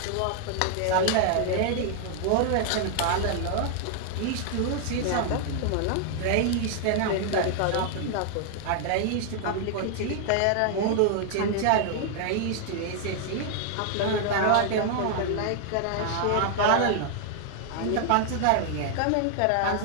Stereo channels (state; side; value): different; both; correlation 0.00